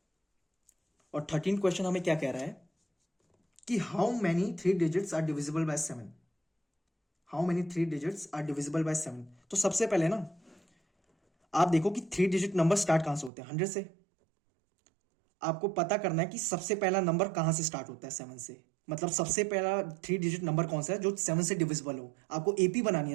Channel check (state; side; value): drops out; left; at 13.3 s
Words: और 13th क्वेश्चन हमें क्या कह रहा है कि how many 3 digits are divisible by 7। How many 3 digits are divisible by 7। तो सबसे पहले ना आप देखो कि 3 डिजिट नंबर स्टार्ट कहां से होते हैं, 100 से। आपको पता करना है कि सबसे पहला नंबर कहां से स्टार्ट होता है, 7 से। मतलब सबसे पहला 3 डिजिट नंबर कौन सा है जो 7 से डिविजिबल हो। आपको एपी बनानी है